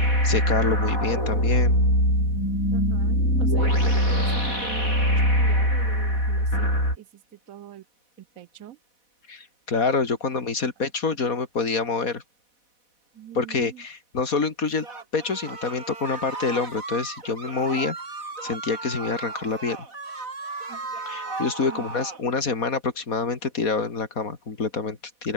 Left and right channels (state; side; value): late; right; 4.2 ms